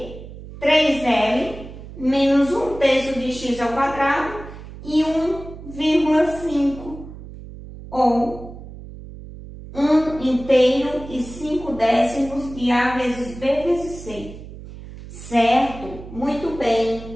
3L, menos 1/3 de x ao quadrado e 1,5, ou 1/3 e 5/10 de A vezes B vezes C. Certo? Muito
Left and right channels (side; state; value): right; noise; hum, 14 dB below the sound